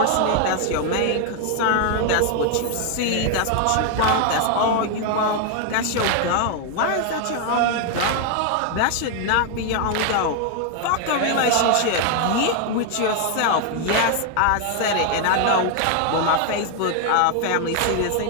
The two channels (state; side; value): different; both; correlation 0.00